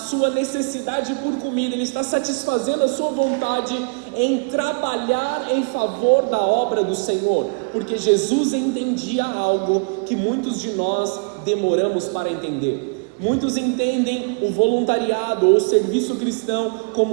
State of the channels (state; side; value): quieter; left; 35.3 dB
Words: necessidade por comida, ele está satisfazendo a sua vontade em trabalhar em favor da obra do Senhor, porque Jesus entendia algo que muitos de nós demoramos para entender. Muitos entendem o voluntariado ou o serviço cristão